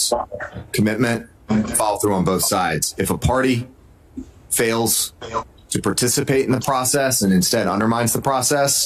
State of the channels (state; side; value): identical; both; correlation 1.00